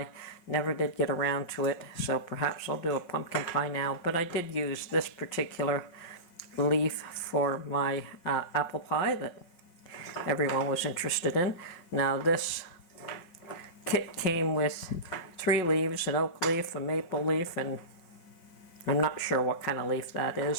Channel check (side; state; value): right; late; 5.5 ms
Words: Never did get around to it, so perhaps I'll do a pumpkin pie now. But I did use this particular leaf for my apple pie that everyone was interested in. Now this kit came with 3 leaves, an oak leaf, a maple leaf, and I'm not sure what kind of leaf that